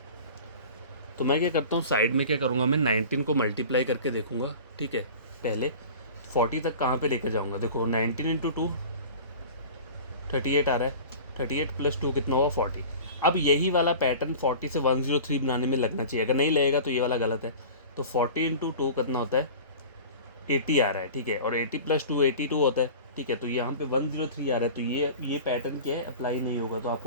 तो मैं क्या करता हूँ, साइड में क्या करूँगा, मैं 19 को मल्टीप्लाई करके देखूँगा, ठीक है, पहले 40 तक कहाँ पे लेकर जाऊँगा, देखो 19 इंटू 2 38 आ रहा है, 38 प्लस 2 कितना हुआ 40। अब यही वाला पैटर्न 40 से 103 बनाने में लगना चाहिए, अगर नहीं लगेगा तो ये वाला गलत है। तो 40 इंटू 2 कितना होता है, 80 आ रहा है, ठीक है, और 80 प्लस 2 82 होता है, ठीक है। तो यहाँ पे 103 आ रहा है, तो ये पैटर्न क्या है, अप्लाई नहीं होगा। तो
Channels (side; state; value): both; inverted; correlation -0.38